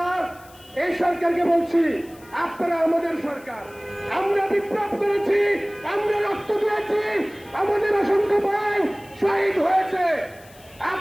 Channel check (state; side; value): noise; left; hiss, 25 dB below the sound